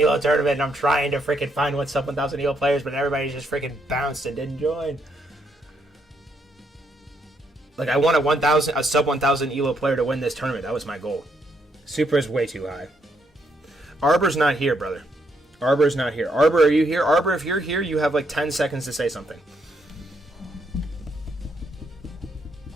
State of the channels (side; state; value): both; normal; correlation 0.75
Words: tournament, and I'm trying to freaking find what sub 1,000 ELO players, but everybody's just freaking bounced and didn't join. Like, I want a sub 1,000 ELO player to win this tournament. That was my goal. Super is way too high. Arbor's not here, brother. Arbor's not here. Arbor, are you here? Arbor, if you're here, you have like 10 seconds to say something.